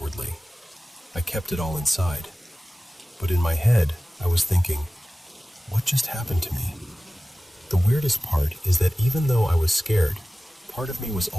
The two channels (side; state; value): both; normal; correlation 0.96